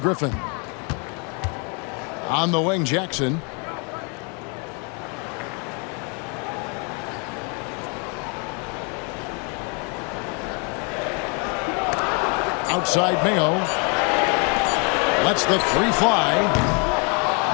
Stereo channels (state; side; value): quieter; right; 35.6 dB